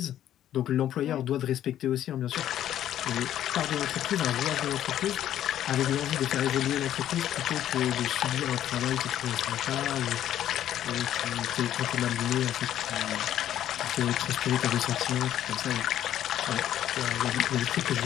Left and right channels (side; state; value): right; quieter; 11.5 dB